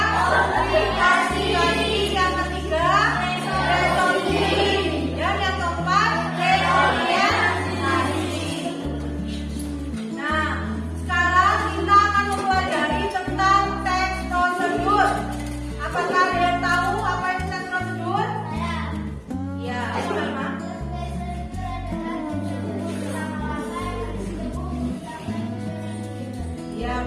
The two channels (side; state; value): both; identical; correlation 1.00